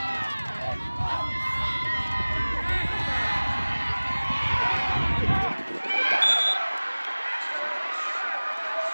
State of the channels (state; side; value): inverted; both; correlation -1.00